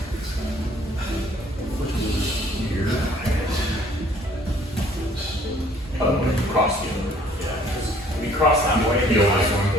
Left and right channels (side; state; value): both; normal; correlation 0.58